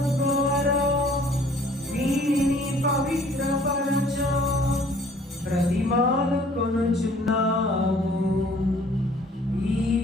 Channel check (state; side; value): normal; both; correlation 0.56